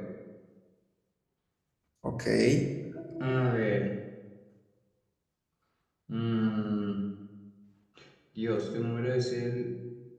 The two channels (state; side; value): identical; both; correlation 1.00